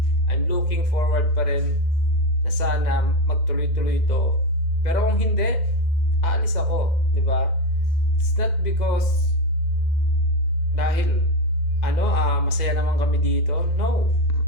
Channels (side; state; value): right; late; 2.1 ms